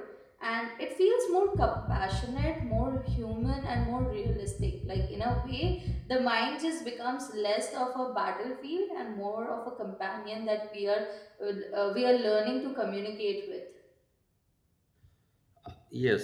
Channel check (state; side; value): identical; both; correlation 1.00